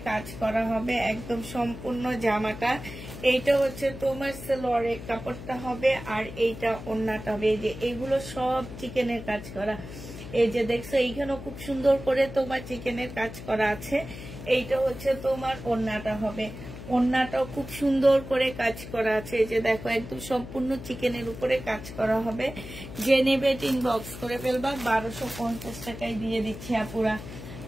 কাজ করা হবে, একদম সম্পূর্ণ জামাটা। এইটা হচ্ছে তোমার সালোয়ারের কাপড়টা হবে, আর এইটা ওড়নাটা হবে। এই যে এগুলো সব চিকেনের কাজ করা। এই যে দেখছো, এইখানেও খুব সুন্দর করে তোমার চিকেনের কাজ করা আছে। এইটা হচ্ছে তোমার ওড়নাটা হবে। ওড়নাটাও খুব সুন্দর করে কাজ করা আছে। এই যে দেখো, একদম সম্পূর্ণ চিকেনের উপরে কাজ করা হবে। যে নেবে ইনবক্স করে ফেলবা। 1250 টাকায় দিয়ে দিচ্ছি আপুরা।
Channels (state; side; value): noise; left; hum, 12 dB below the sound